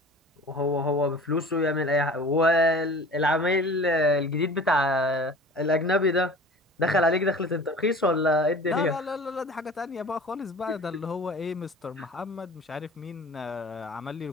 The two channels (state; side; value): normal; both; correlation 0.42